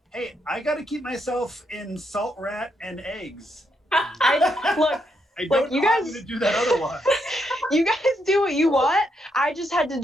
Hey, I gotta keep myself in salt rat and eggs. Look, I Look, don't you know how I'm guys- gonna do that otherwise. you guys do what you want. I just had to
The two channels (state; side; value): normal; both; correlation 0.78